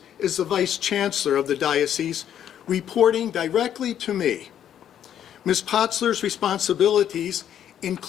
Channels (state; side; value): quieter; right; 10.0 dB